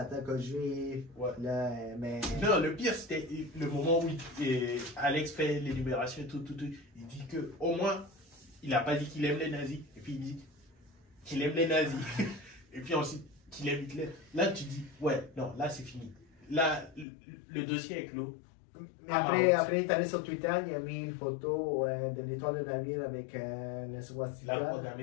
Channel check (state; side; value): drops out; right; at 17.1 s